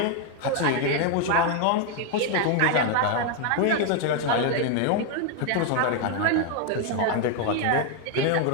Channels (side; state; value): both; different; correlation 0.01